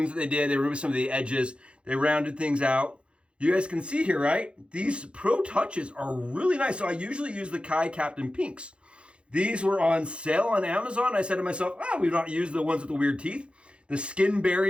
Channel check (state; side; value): late; left; 0.058 ms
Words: that they did. They removed some of the edges. They rounded things out. You guys can see here, right? These Pro Touches are really nice. So I usually use the Kai Captain Pinks. These were on sale on Amazon. I said to myself, we've not used the ones with the weird teeth. The skin